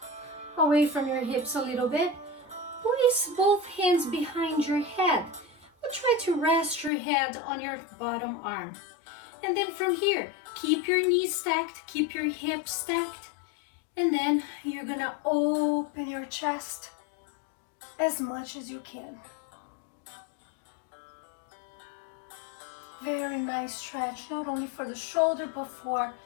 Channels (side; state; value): right; drops out; at 6.9 s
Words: Away from your hips a little bit. Place both hands behind your head. But try to rest your head on your bottom arm. And then from here, keep your knees stacked, keep your hips stacked. And then you're gonna open your chest as much as you can. Very nice stretch, not only for the shoulder, but for